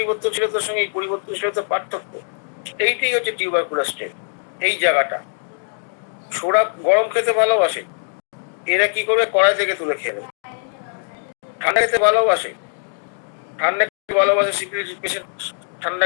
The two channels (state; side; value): silent; right; digital silence